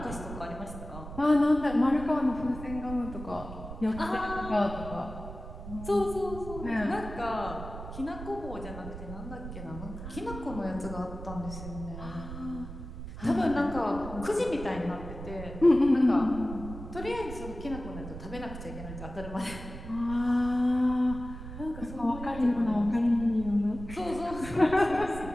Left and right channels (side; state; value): right; noise; rumble, 10 dB below the sound